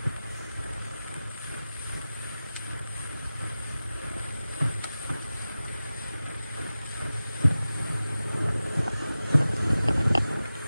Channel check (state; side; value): inverted; both; correlation -0.95